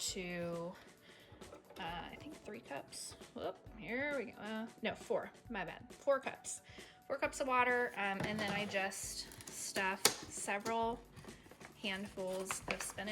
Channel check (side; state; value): both; identical; correlation 1.00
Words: to I think 3 cups. Whoop, here we go. No, 4. My bad. 4 cups. 4 cups of water, and then I just stuffed several handfuls of